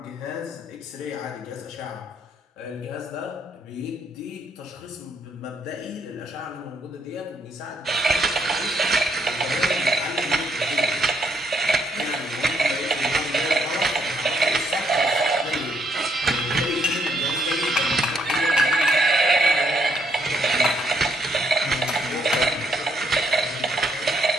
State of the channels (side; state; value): both; normal; correlation 0.73